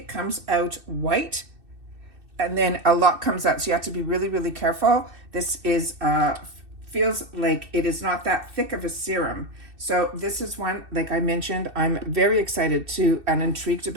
comes out white, and then a lot comes out. So you have to be really, really careful. This is, feels like it is not that thick of a serum. So this is one, like I mentioned, I'm very excited to and intrigued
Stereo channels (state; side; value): late; left; 2.6 ms